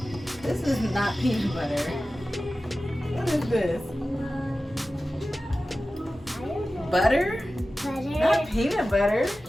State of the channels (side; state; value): both; normal; correlation 0.95